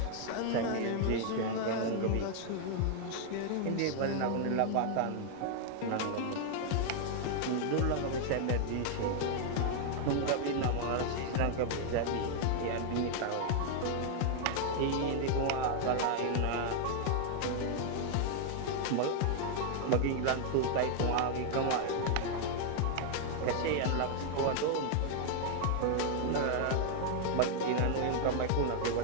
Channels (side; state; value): both; different; correlation 0.00